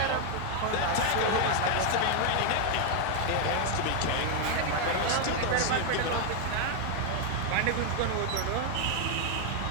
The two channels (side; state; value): both; different; correlation 0.01